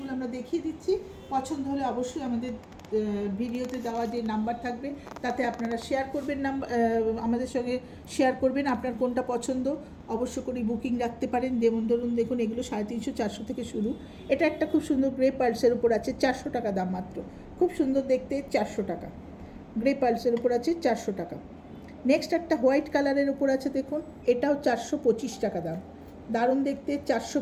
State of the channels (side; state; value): both; identical; correlation 1.00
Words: আমরা দেখিয়ে দিচ্ছি। পছন্দ হলে অবশ্যই আমাদের ভিডিওতে দেওয়া যে নাম্বার থাকবে তাতে আপনারা শেয়ার করবেন, আমাদের সঙ্গে শেয়ার করবেন আপনার কোনটা পছন্দ। অবশ্য করে বুকিং রাখতে পারেন। যেমন ধরুন, দেখুন এগুলো 350-400 থেকে শুরু। এটা একটা খুব সুন্দর গ্রে পার্লসের উপর আছে, 400 টাকা দাম মাত্র। খুব সুন্দর দেখতে, 400 টাকা। গ্রে পার্লসের উপর আছে, 400 টাকা। নেক্সট একটা হোয়াইট কালারের উপর আছে, দেখুন এটাও 425 টাকা দাম। দারুণ দেখতে,